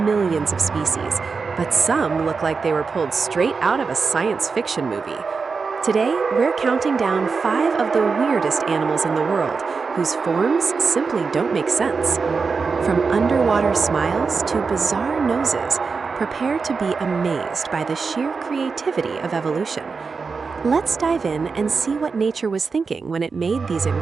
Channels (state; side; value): quieter; left; 4.9 dB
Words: of species, but some look like they were pulled straight out of a science fiction movie. Today, we're counting down 5 of the weirdest animals in the world, whose forms simply don't make sense. From underwater smiles to bizarre noses, prepare to be amazed by the sheer creativity of evolution. Let's dive in and see what nature was thinking when it made these